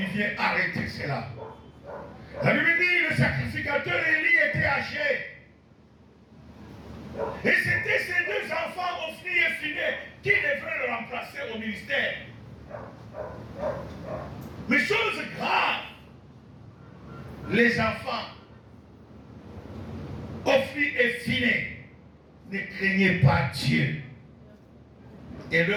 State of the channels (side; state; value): both; identical; correlation 1.00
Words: vient arrêter cela. La Bible dit, le sacrificateur Élie était âgé. Et c'était ces deux enfants, Ophni et Phiné, qui devraient le remplacer au ministère. Mais chose grave, les enfants, Ophni et Phiné, ne craignaient pas Dieu. Et